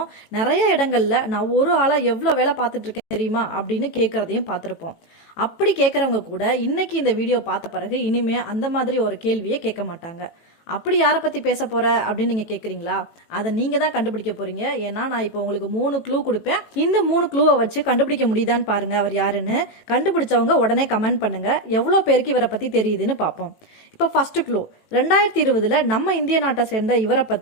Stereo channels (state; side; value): late; right; 18 ms